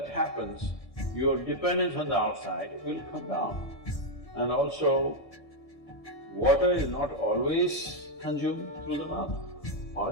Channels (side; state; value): right; late; 1.7 ms